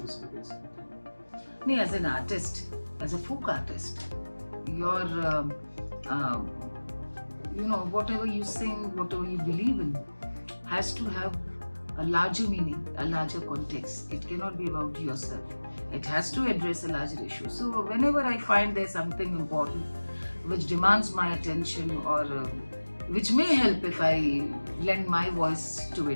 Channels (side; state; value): both; inverted; correlation -1.00